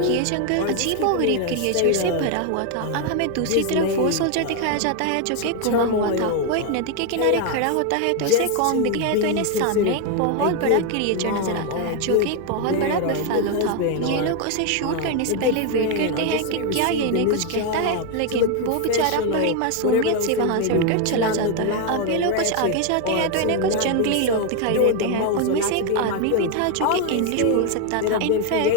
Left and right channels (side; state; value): both; different; correlation 0.01